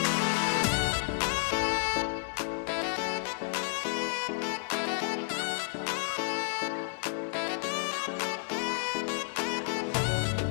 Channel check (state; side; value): silent; right; digital silence